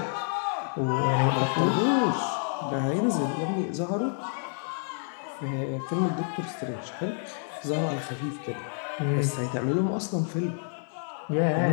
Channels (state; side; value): silent; right; 59 dB below the other